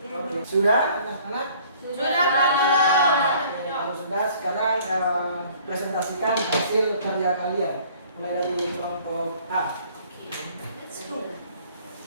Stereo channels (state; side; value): inverted; both; correlation -0.55